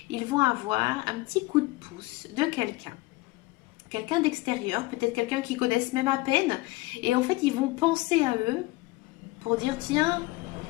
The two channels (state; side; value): quieter; right; 21.3 dB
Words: ils vont avoir un petit coup de pouce de quelqu'un d'extérieur, peut-être quelqu'un qu'ils connaissent même à peine, et en fait ils vont penser à eux pour dire tiens,